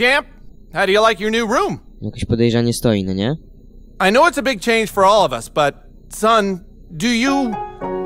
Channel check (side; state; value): both; identical; correlation 1.00